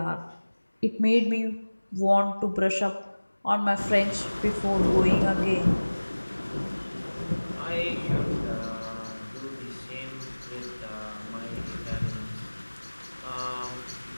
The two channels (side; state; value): both; inverted; correlation -1.00